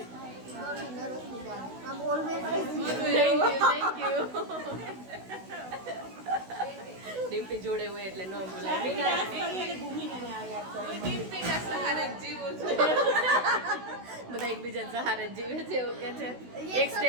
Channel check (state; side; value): late; left; 16 ms